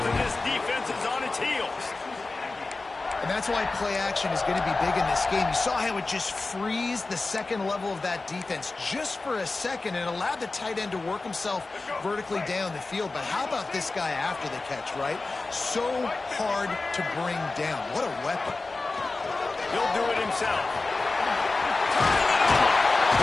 and this defense is on its heels. And that's why play action is going to be big in this game. You saw how it just frees the second level of that defense just for a second and allowed the tight end to work himself vertically down the field. But how about this guy after the catch, right? So hard to bring down. What a weapon. He'll do it himself.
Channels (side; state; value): right; quieter; 3.5 dB